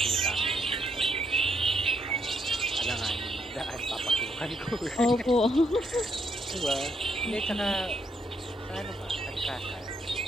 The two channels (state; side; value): normal; both; correlation 0.75